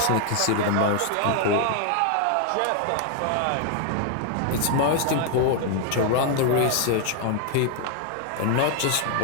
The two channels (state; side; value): different; both; correlation 0.00